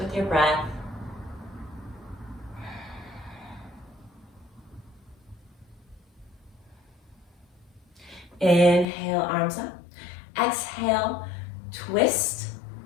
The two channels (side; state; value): right; drops out; at 8.8 s